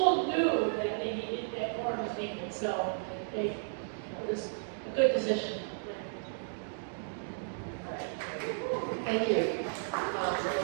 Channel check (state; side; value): silent; left; digital silence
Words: knew that they needed, that Corin was needed, so it was a good decision. Thank you.